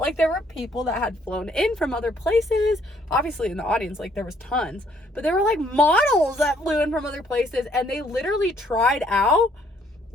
there were people that had flown in from other places. Obviously in the audience, like there was tons, but there were like models that flew in from other places, and they literally tried out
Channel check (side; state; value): both; normal; correlation 0.65